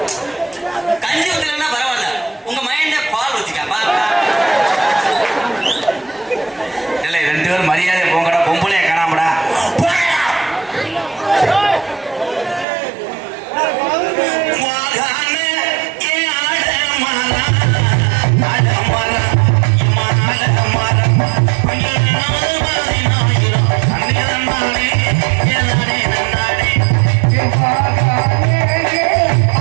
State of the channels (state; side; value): drops out; left; at 12.7 s